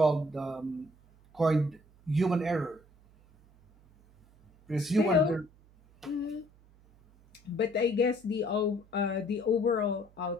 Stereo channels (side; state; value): right; noise; hum, 28 dB below the sound